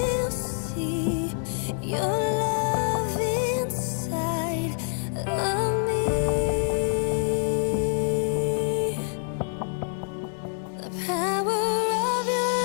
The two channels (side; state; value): right; silent; 61 dB below the other